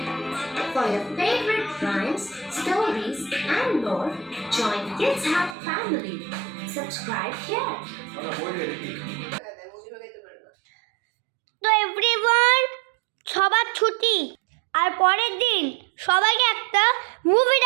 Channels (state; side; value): drops out; left; at 5.6 s